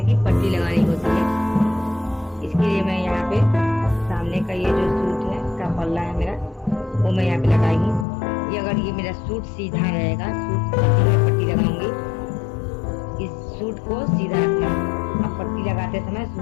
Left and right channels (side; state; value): right; drops out; at 8.1 s